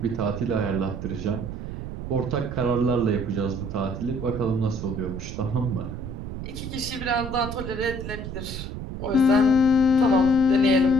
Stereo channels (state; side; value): noise; right; rumble, 7 dB below the sound